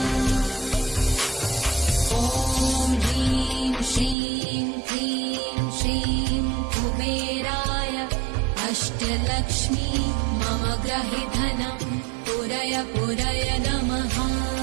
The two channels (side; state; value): left; drops out; at 4.2 s